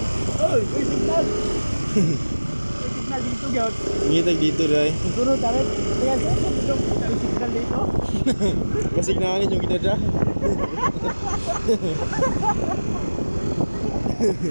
Oy, may signal. May signal dito, gyud. Ngitag dito dai. Sunod tayo. Kaya may signal dito. Kasignalan yung kita dra.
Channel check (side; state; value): both; inverted; correlation -1.00